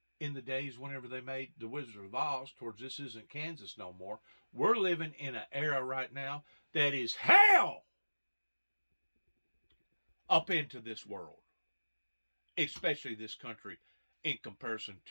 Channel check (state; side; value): inverted; both; correlation -1.00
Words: in the days whenever they made The Wizard of Oz towards This Isn't Kansas no more. We're living in an era right now that is hell up into this world, especially this country, in comparison